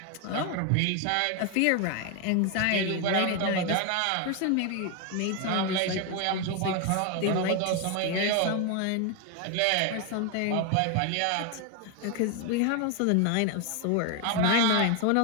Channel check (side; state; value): both; different; correlation 0.01